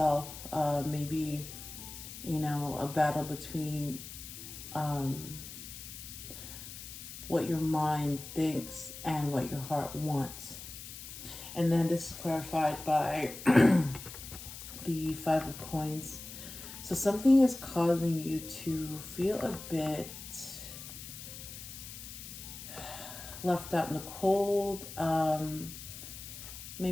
Maybe, you know, a battle between what your mind thinks and what your heart wants. And then this is clarified by the 5 of Coins. So something is causing you to feel a bit left out in the cold,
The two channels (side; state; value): left; noise; hiss, 12 dB below the sound